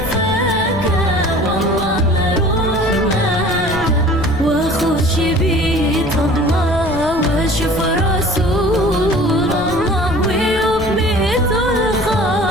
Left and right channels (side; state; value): left; noise; rumble, 10 dB below the sound